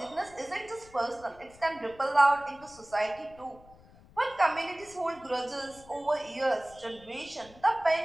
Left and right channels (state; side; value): noise; left; rumble, 24 dB below the sound